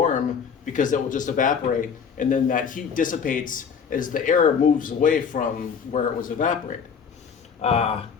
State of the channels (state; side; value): quieter; right; 6.6 dB